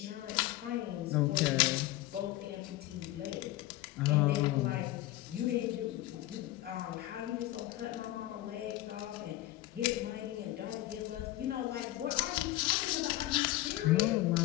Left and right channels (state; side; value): quieter; right; 16.0 dB